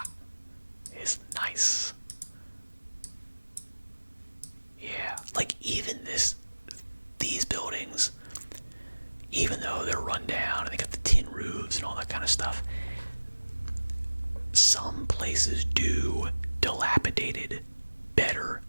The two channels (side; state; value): both; inverted; correlation -1.00